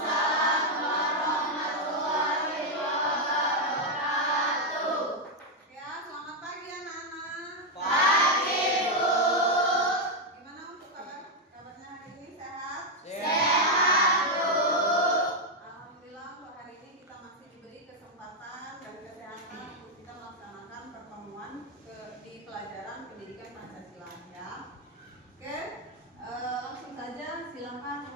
warahmatullahi wabarakatuh. Ya, selamat pagi anak-anak. Pagi, Bu. Gimana untuk kabarnya hari ini, sehat? Sehat, Bu. Alhamdulillah untuk hari ini kita masih diberi kesempatan dan kesehatan untuk kita melaksanakan pertemuan di pelajaran pendidikan Pancasila ya. Oke, langsung saja silakan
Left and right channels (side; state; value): both; normal; correlation 0.02